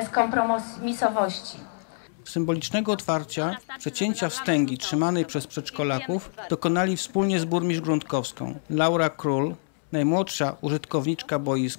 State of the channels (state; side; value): silent; right; 61 dB below the other